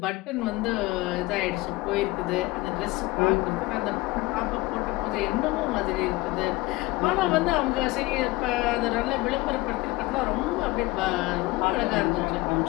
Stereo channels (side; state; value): right; quieter; 21.1 dB